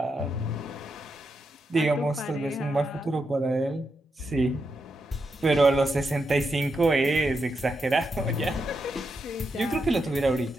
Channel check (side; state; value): both; normal; correlation 0.84